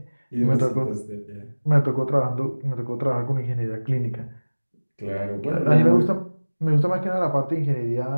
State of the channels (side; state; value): both; inverted; correlation -1.00